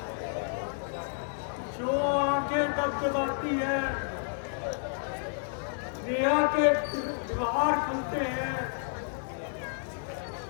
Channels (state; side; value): silent; right; digital silence